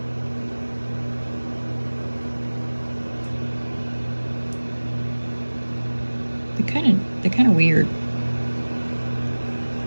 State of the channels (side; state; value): both; inverted; correlation -1.00